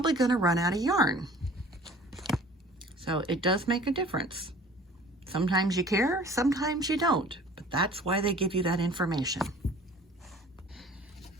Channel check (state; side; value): normal; both; correlation 0.48